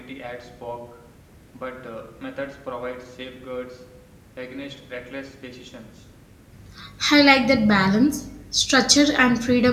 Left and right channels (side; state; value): both; identical; correlation 1.00